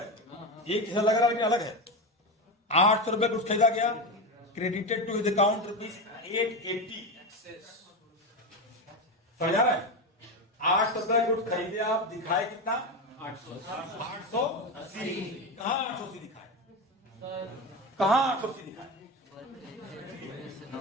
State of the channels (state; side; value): normal; both; correlation 0.17